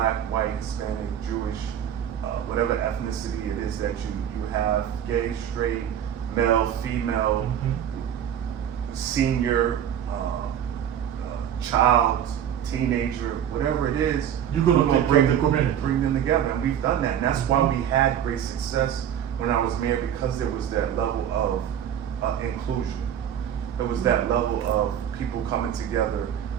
white, Hispanic, Jewish, whatever ethnicity it is that you have, gay, straight, male, female, senior, child, teenager, whatever it is, You're gonna take care of the community. bring them together, and we've done that, and that's why we had great success when I was mayor, because there was that level of inclusion. There was that level of people coming together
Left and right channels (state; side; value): quieter; left; 9.6 dB